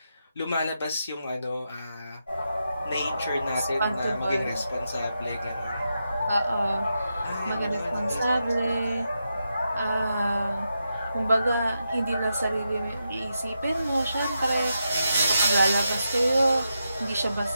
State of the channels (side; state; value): both; inverted; correlation -0.86